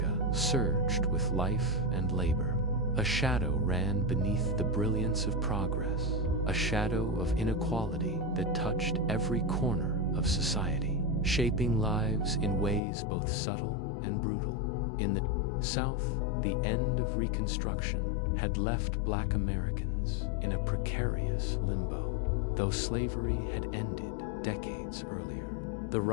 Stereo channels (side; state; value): right; drops out; at 12.8 s